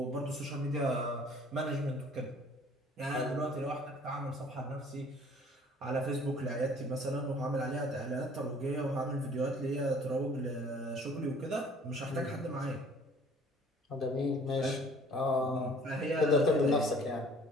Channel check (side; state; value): both; normal; correlation 0.53